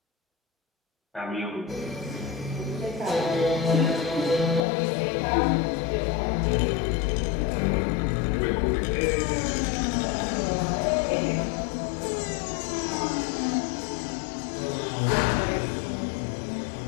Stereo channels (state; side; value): drops out; right; at 4.6 s